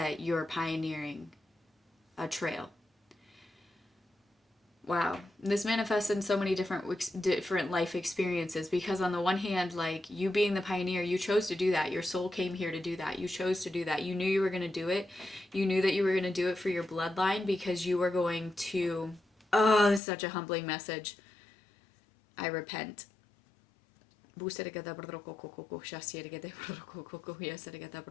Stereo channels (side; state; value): right; drops out; at 20.0 s